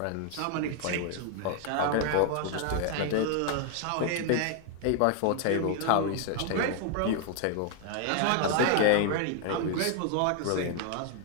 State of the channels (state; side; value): different; both; correlation 0.00